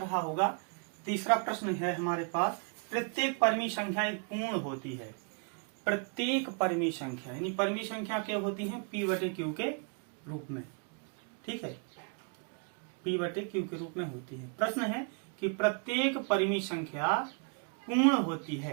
होगा। तीसरा प्रश्न है हमारे पास, प्रत्येक परिमेय संख्या एक पूर्ण होती है। प्रत्येक परिमेय संख्या यानी परिमेय संख्या क्या होती है, P/Q के रूप में, ठीक है, P/Q के रूप में होती है। प्रश्न है कि प्रत्येक परिमेय संख्या पूर्ण होती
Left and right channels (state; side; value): quieter; left; 39.2 dB